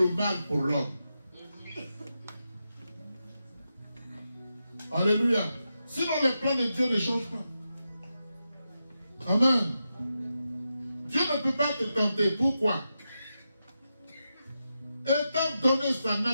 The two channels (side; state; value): both; inverted; correlation -0.88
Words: mal pour l'homme. Alléluia. Sinon, les plans de Dieu ne changent pas. Amen. Dieu ne peut pas te tenter. Pourquoi? Étant donné sa